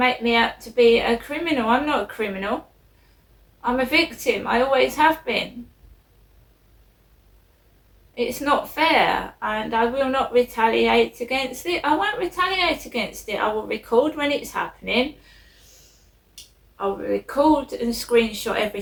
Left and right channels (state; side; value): identical; both; correlation 1.00